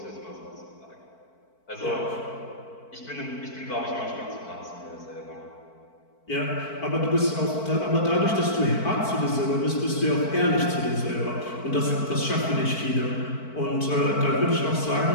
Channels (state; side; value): late; right; 4.5 ms